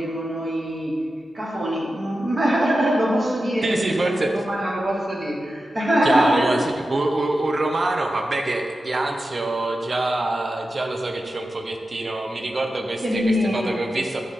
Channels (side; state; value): both; normal; correlation 0.92